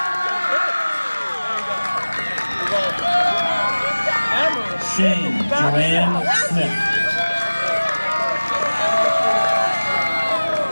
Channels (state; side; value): inverted; both; correlation -1.00